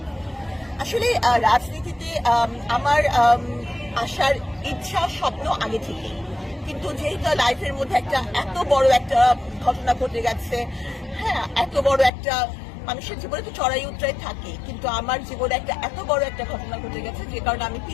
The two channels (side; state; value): right; drops out; at 12.1 s